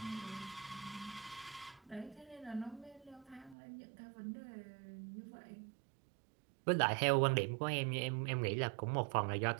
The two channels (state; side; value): drops out; left; at 3.6 s